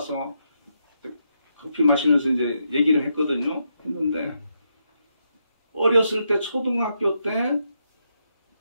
커피 마시면서 이제 얘기를 했거든요. 했는데 어렸을 때 초등학교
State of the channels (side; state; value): both; inverted; correlation -0.81